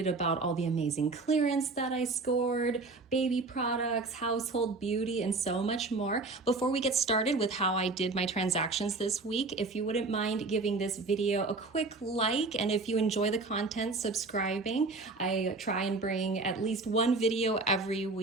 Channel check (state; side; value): quieter; left; 3.6 dB